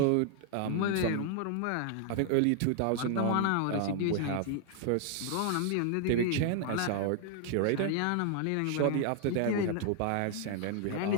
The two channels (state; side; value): different; both; correlation 0.00